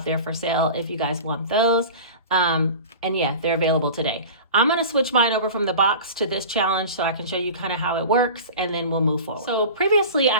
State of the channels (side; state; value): both; inverted; correlation -0.36